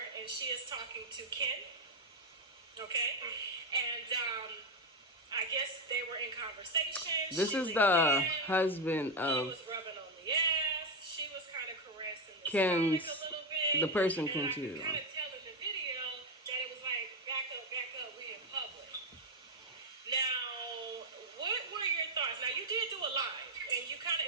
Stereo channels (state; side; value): normal; both; correlation 0.08